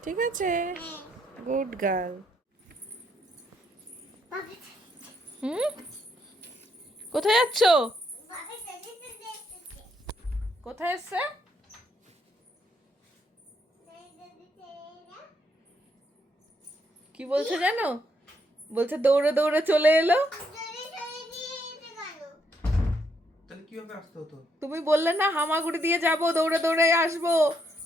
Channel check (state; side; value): normal; both; correlation 0.74